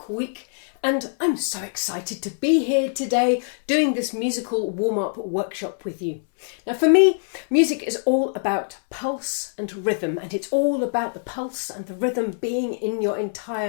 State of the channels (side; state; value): right; silent; 63 dB below the other